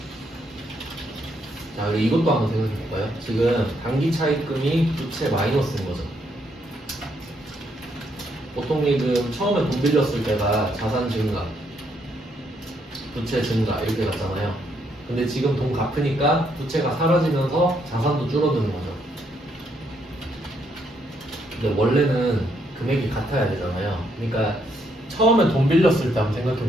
자, 그리고 이것도 한번 생각해 볼까요? 지금 단기 차입금이 부채 마이너스인 거죠. 보통 예금 처음에 돈 빌렸을 때가 자산 증가, 부채 증가 이렇게 갔잖아요. 근데 지금 돈 갚으니까 부채가 사라지면서 자산도 줄어드는 거죠. 근데 원래는 금액이 같아야 되잖아요. 그러니까 처음에 돈 빌렸을 때 한번 생각해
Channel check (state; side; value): normal; both; correlation 0.74